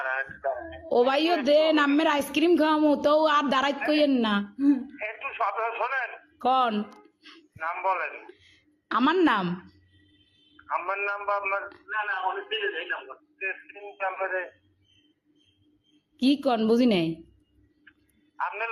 ও ভাইও দেন, আম্মের আইসক্রিম খাওয়ামো তো আর দাঁড়াইত কইেন না। একটু শোনেন। কন নাম বলেন। আমার নাম? আমার নাম বা আপনার? না অনেক দিলে এই নাম্বার নাম্বারে। কি কন বুঝি নাই। আপনার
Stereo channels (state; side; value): identical; both; correlation 1.00